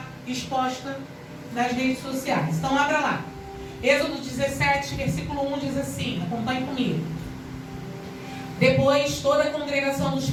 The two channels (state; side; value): identical; both; correlation 1.00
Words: exposta nas redes sociais. Então, abra lá. Êxodo 17, versículo 1 diz assim, acompanhe comigo. Depois, toda a congregação dos